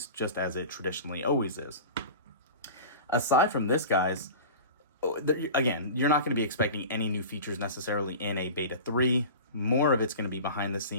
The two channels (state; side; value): inverted; both; correlation -0.35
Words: just as it traditionally always is. Aside from this, guys, again, you're not going to be expecting any new features necessarily in a Beta 3. More of it's going to be behind the